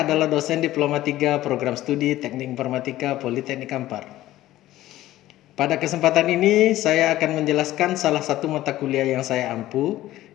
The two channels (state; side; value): quieter; right; 15.1 dB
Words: dosen Diploma 3 Program Studi Teknik Informatika Politeknik Kampar. Pada kesempatan ini saya akan menjelaskan salah satu mata kuliah yang saya ampu,